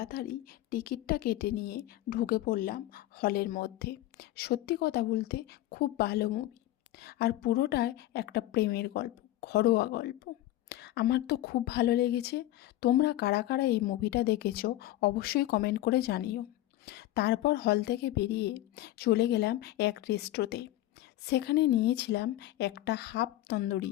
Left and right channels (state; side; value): quieter; right; 15.1 dB